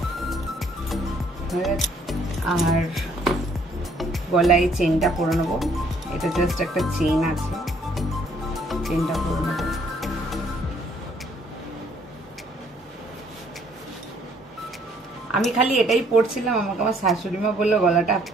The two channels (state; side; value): normal; both; correlation 0.64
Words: আর গলায় চেনটা পরে নেবো, এটা জাস্ট একটা চেন আছে, চেনটা পরে নেবো। আমি খালি এটাই পরছিলাম, আমাকে আমার শাশুড়ি মা বললো গলাটা